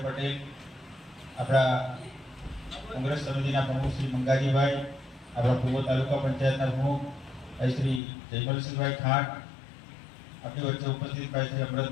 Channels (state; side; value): drops out; right; at 8.0 s